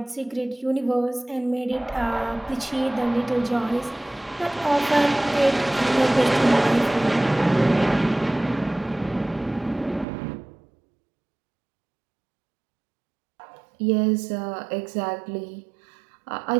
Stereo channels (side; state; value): left; drops out; at 10.1 s